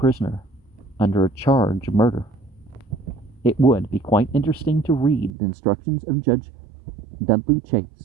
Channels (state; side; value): drops out; left; at 5.3 s